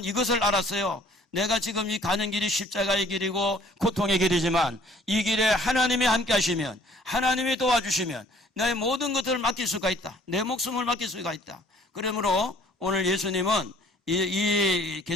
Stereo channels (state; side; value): normal; both; correlation 0.56